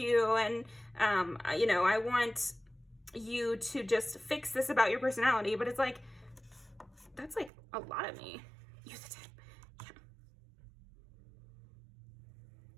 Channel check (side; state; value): left; drops out; at 7.5 s